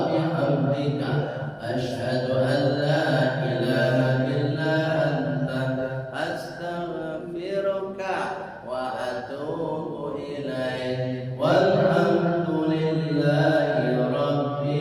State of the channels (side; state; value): both; identical; correlation 1.00